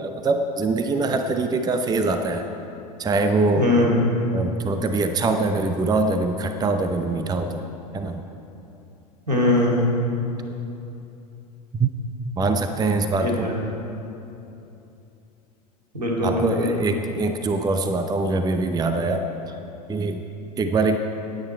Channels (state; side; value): normal; both; correlation 0.39